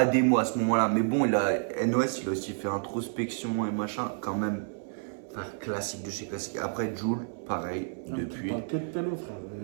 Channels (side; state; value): left; silent; 58 dB below the other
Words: démo à ce moment-là. Mais bon, NOS, il a aussi fait introspection et machin, quand même. Enfin, classique de chez classique. Après, Jul, pareil, Non, depuis. tu parles que de pélo, frère,